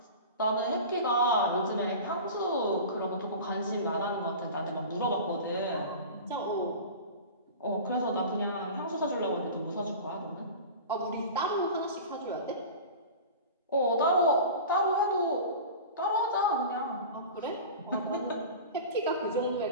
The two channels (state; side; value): inverted; both; correlation -0.34